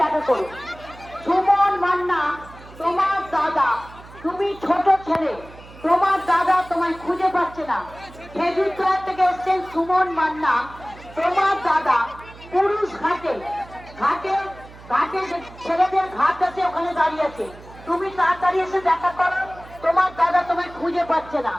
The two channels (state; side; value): noise; right; hum, 19 dB below the sound